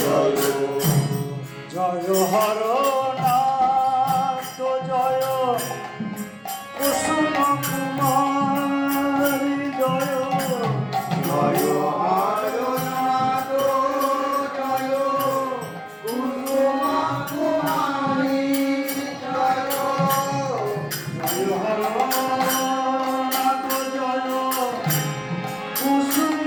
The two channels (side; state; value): both; identical; correlation 1.00